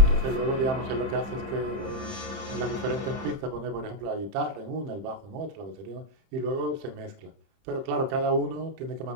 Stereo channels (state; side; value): late; left; 30 ms